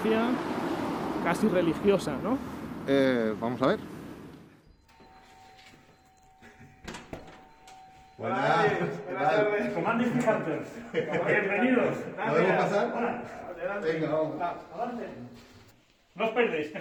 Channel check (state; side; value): identical; both; correlation 1.00